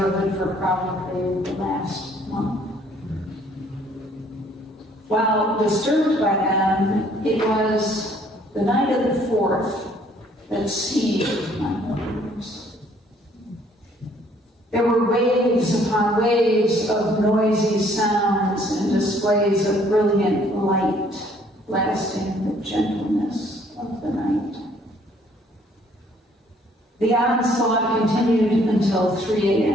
for probably the last month. While disturbed by them, it was the night of the 4th that seized my nerves. There were waves upon waves of noisy sounds and displays of brilliant light, blasting the gentleness of the night. The onslaught continued until 3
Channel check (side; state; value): both; normal; correlation 0.62